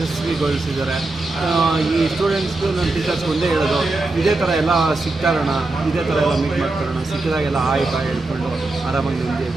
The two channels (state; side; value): quieter; left; 3.1 dB